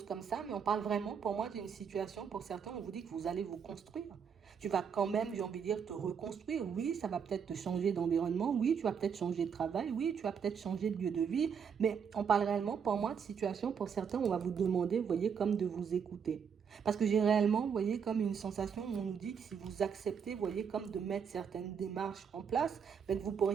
comme ça, mais on parle vraiment pour moi d'une situation, pour certains, on vous dit que vous allez vous construire. Tu vas quand même, j'ai envie de dire, te reconstruire. Oui, ça va peut-être te changer d'environnement. Oui, tu vas peut-être changer de travail. Oui, tu vas peut-être changer de lieu de vie. Mais on parle réellement pour moi de situation, pour certains, on va vous demander, vous voyez, comme de vous écouter. Parce que j'ai réellement, vous voyez, comme une sensation où on nous dit que si vous acceptez, vous voyez, comme de mettre certaines démarches en place, ben, vous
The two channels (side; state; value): left; quieter; 7.0 dB